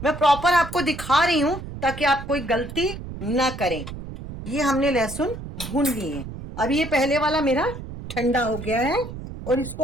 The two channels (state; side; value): noise; right; rumble, 10 dB below the sound